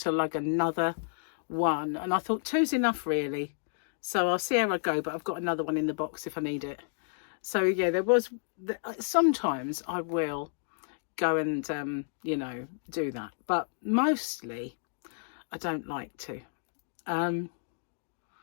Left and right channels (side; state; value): right; silent; digital silence